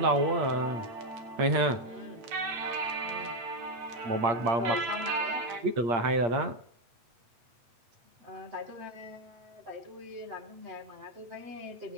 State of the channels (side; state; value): left; late; 8.6 ms